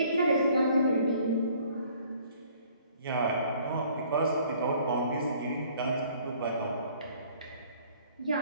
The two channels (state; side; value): inverted; both; correlation -0.57